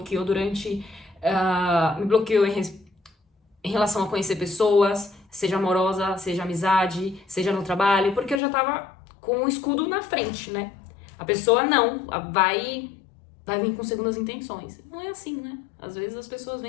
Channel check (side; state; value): right; drops out; at 8.4 s